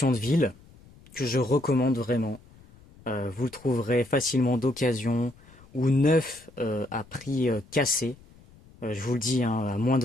de ville que je recommande vraiment. Vous le trouverez facilement d'occasion ou neuf à prix cassé. Je vous le dis, hein, à moins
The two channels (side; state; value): left; noise; rumble, 25 dB below the sound